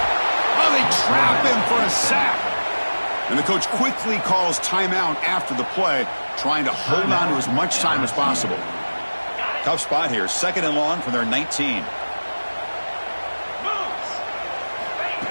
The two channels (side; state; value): both; inverted; correlation -1.00